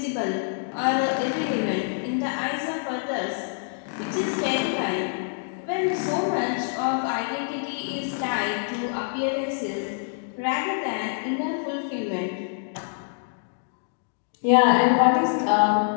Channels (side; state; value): right; silent; digital silence